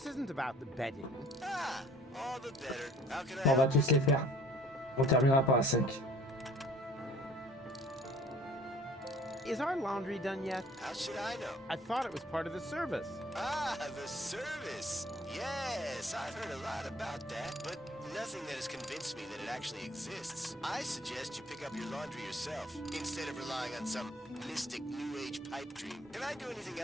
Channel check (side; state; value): both; normal; correlation 0.53